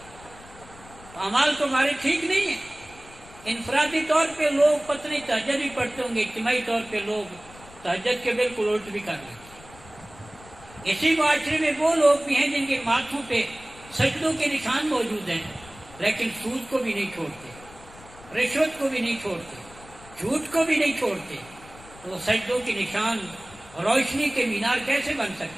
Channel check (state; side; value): noise; left; rumble, 21 dB below the sound